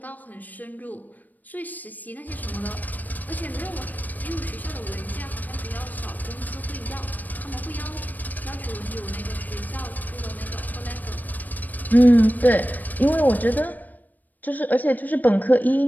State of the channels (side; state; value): right; late; 0.085 ms